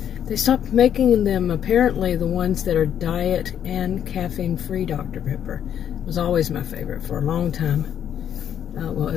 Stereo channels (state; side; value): quieter; right; 9.5 dB